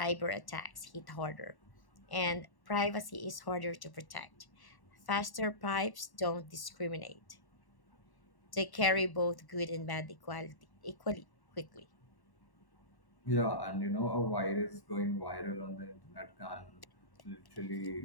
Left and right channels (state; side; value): late; right; 1.1 ms